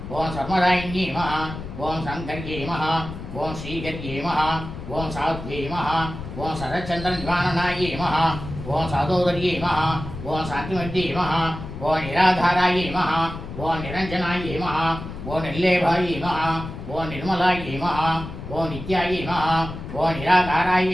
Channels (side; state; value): left; noise; rumble, 10 dB below the sound